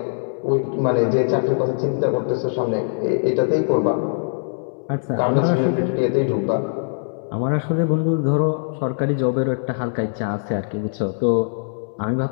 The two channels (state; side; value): silent; right; 64 dB below the other